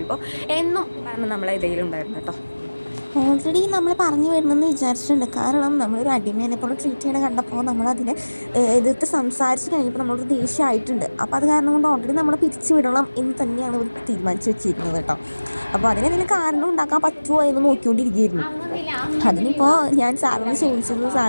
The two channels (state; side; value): inverted; both; correlation -1.00